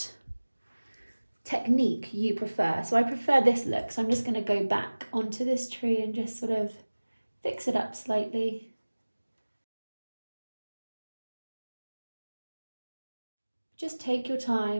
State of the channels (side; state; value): both; inverted; correlation -1.00